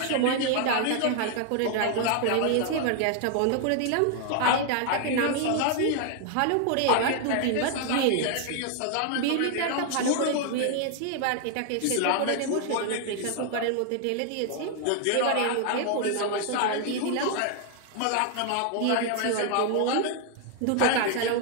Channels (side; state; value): both; different; correlation 0.00